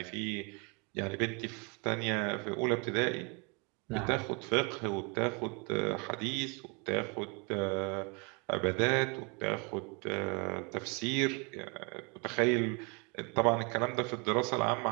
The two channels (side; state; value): left; quieter; 31.7 dB